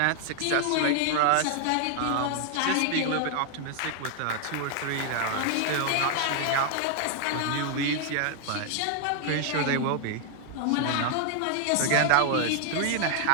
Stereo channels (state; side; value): different; both; correlation 0.00